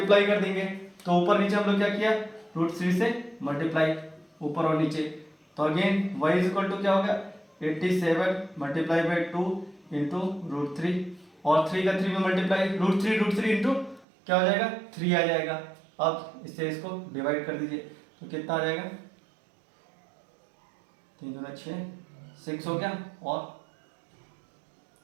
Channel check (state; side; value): drops out; left; at 14.1 s